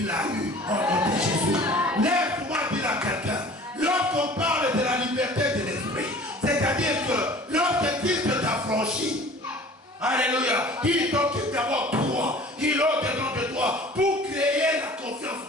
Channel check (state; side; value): normal; both; correlation 0.46